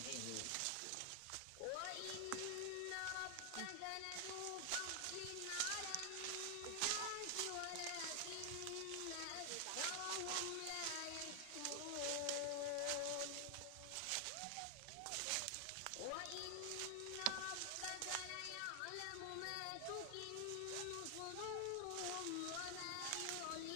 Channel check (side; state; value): both; different; correlation 0.00